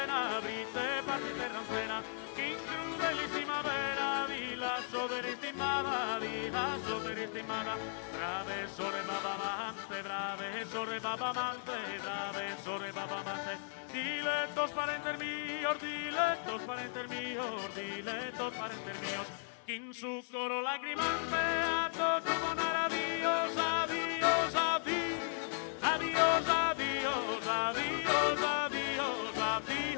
brite partite ronzena, che in crudelissima vera vi lascio per istimata, brave sorre babamante, brave sorre babamante, brave sorre babamante, dilectos parenter míos, que en su coro lagrimante a todos poner adiós, adiós, adiós, adiós, adiós, adiós, adiós,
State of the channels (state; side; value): silent; right; 54 dB below the other